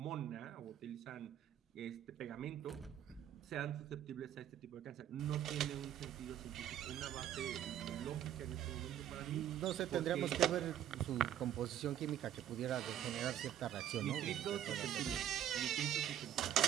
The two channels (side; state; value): left; quieter; 10.8 dB